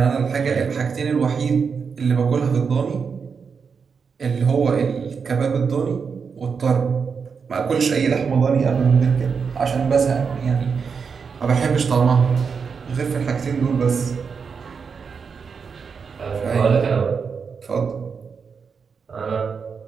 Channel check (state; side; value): quieter; left; 5.8 dB